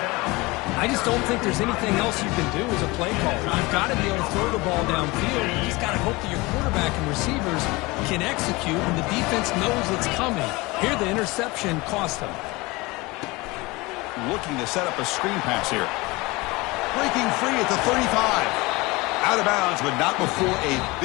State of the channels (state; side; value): quieter; right; 23.2 dB